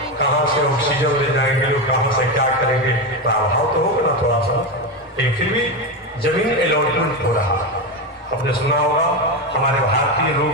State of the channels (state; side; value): normal; both; correlation 0.14